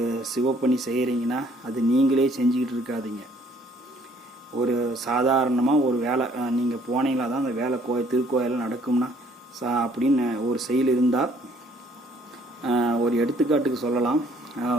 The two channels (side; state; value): both; normal; correlation 0.61